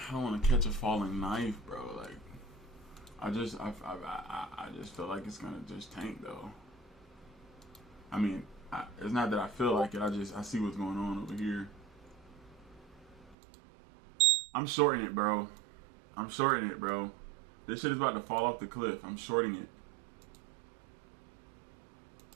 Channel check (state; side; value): drops out; left; at 13.4 s